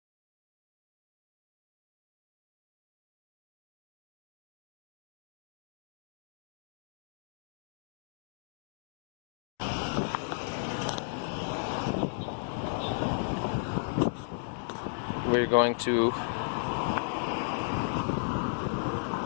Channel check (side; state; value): right; silent; digital silence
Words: We're going to